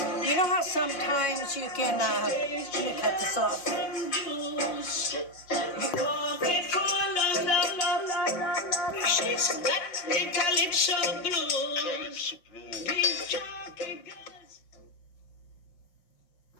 You know how sometimes you can, let me cut this off.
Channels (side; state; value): right; late; 5.6 ms